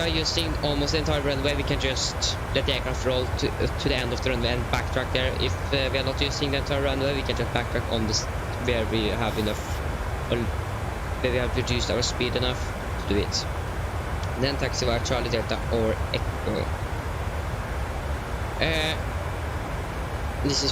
using almost the entire runway, we can just let the aircraft roll to the end of the runway and backtrack there. If we are not using the entire runway, we can just backtrack on this where we have enough, or where we have reduced our speed enough to do it. Then taxi via Charlie Delta or Echo. This is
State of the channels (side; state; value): both; identical; correlation 1.00